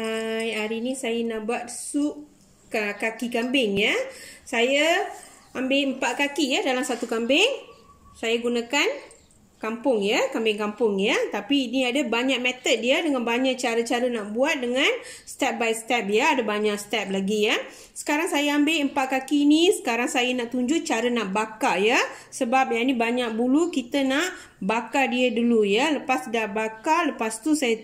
Hari ni saya nak buat sup kaki kambing ya. Saya ambil 4 kaki ya dalam satu kambing. Saya gunakan kampung ya, kambing kampung ya. Tapi ini ada banyak method dia dengan banyak cara-cara nak buat dengan step by step ya. Ada banyak step lagi ya. Sekarang saya ambil 4 kaki ni. Sekarang saya nak tunjuk cara nak bakar ya. Sebab yang ni banyak bulu, kita nak bakar dia dulu ya. Lepas dah bakar, lepas tu saya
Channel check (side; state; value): both; identical; correlation 1.00